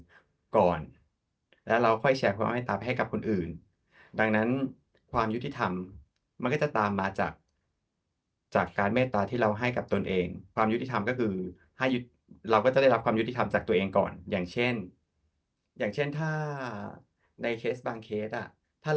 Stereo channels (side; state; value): both; identical; correlation 1.00